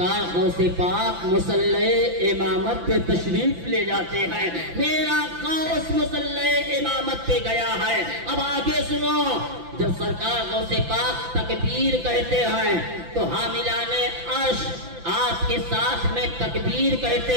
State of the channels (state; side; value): late; left; 5.9 ms